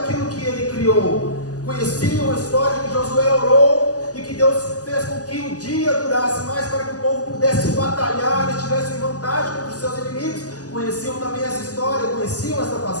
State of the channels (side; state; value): right; late; 0.67 ms